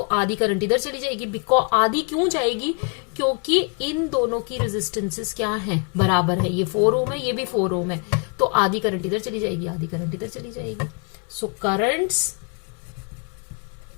आधी करंट इधर चली जाएगी। बिकॉज आधी क्यों जाएगी, क्योंकि इन दोनों की रेजिस्टेंसेस क्या है, बराबर है। ये 4 ओम है, ये भी 4 ओम है, तो आधी करंट इधर चली जाएगी, आधी करंट इधर चली जाएगी। सो करंट्स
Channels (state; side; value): quieter; right; 36.5 dB